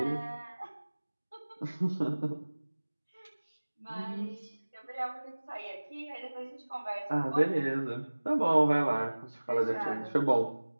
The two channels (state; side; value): inverted; both; correlation -1.00